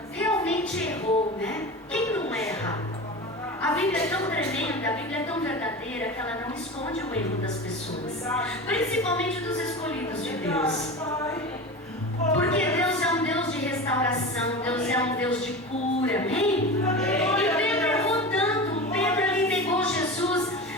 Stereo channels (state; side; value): normal; both; correlation 0.29